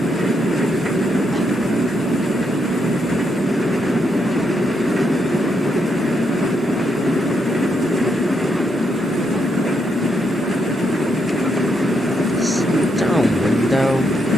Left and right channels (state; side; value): normal; both; correlation 0.79